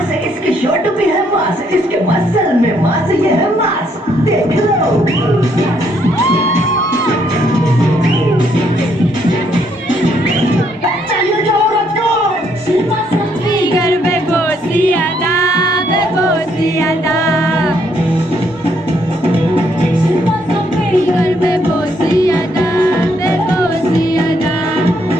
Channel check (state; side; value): normal; both; correlation 0.71